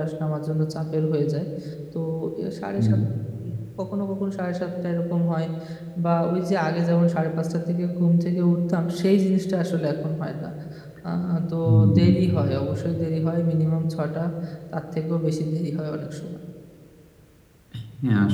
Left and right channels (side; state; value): both; identical; correlation 1.00